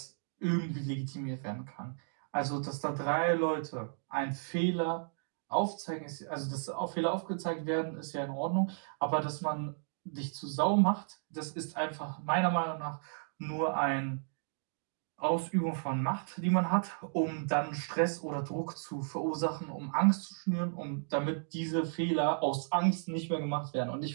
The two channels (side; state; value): left; silent; digital silence